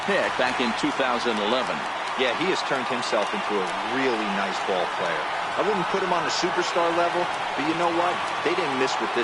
pick back in 2011. Yeah, he has turned himself into a really nice ball player. I wouldn't put him on the superstar level, but you know what? They didn't miss with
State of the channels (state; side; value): identical; both; correlation 1.00